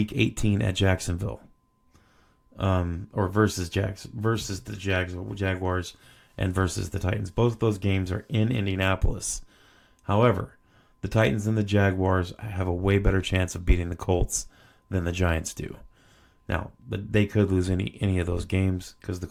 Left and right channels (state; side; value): identical; both; correlation 1.00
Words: 18 at Jacksonville, or versus the Jaguars and versus the Titans. Both of those games are in Indianapolis. However, the Titans and the Jaguars have a way better chance of beating the Colts than the Giants do. Now, but they could lose any of those games because the